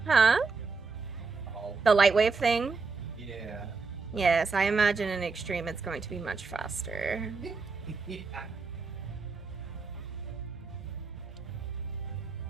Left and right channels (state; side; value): quieter; left; 4.4 dB